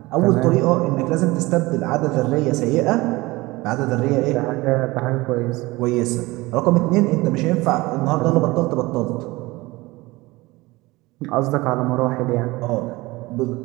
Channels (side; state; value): left; quieter; 21.2 dB